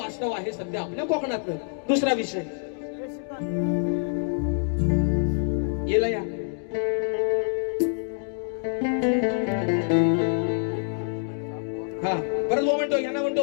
आहे सध्या आपल्या कोकणातलं. दुसरा विषय येला या हा परत बुवा म्हणतो, यांना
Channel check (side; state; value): right; silent; 60 dB below the other